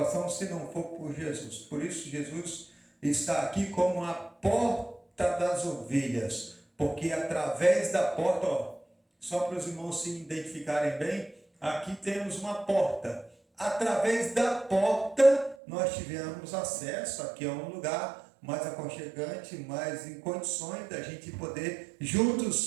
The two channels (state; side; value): drops out; left; at 15.6 s